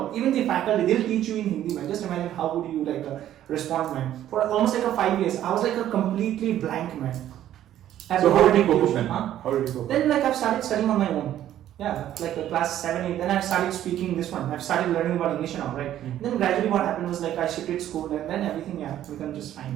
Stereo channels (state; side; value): quieter; left; 11.9 dB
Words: Even the faculty, they'll teach you in Hindi, man. Just imagine how would you respond, man. For almost 5 years, I was a completely blank man. I have So to how go did you to cope up tuition, then? huh? How did you cope up? Then like I've started studying on my own. Yeah, like class 7, 8. Then I started speaking this one. I've started learning about English now, right? Then gradually what happened was like I shifted school and then everything become just